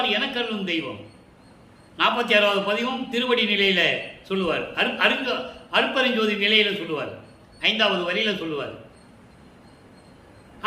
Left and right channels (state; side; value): identical; both; correlation 1.00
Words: எனக்கு அருளும் தெய்வம். 46வது பதிவும் திருவடி நிலையில சொல்லுவார், அருப்பெருஞ்சோதி நிலையில சொல்லுவார், 5வது வரியில சொல்லுவார்.